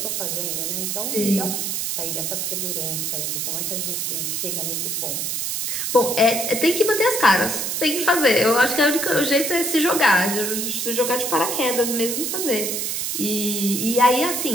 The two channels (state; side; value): noise; right; hiss, 1 dB below the sound